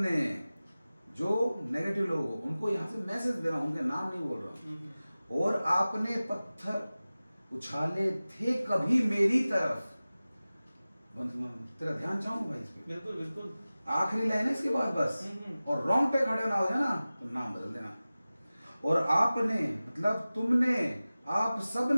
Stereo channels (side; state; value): both; inverted; correlation -0.97